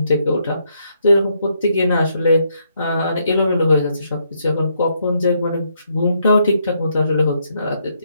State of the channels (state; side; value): inverted; both; correlation -0.75